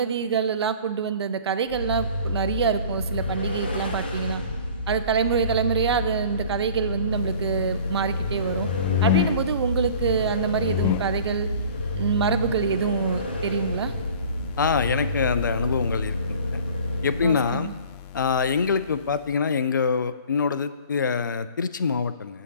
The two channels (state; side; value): inverted; both; correlation -0.47